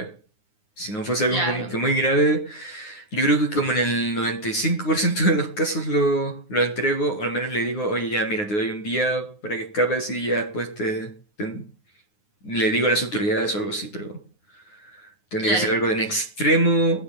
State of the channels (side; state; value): right; late; 9.6 ms